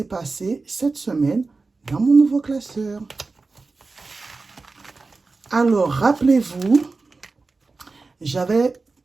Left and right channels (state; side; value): quieter; left; 3.9 dB